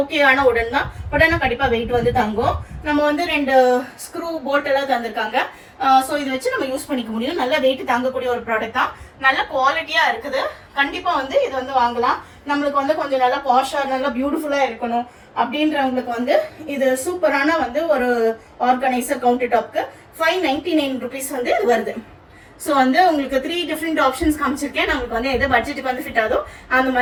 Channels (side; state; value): both; identical; correlation 1.00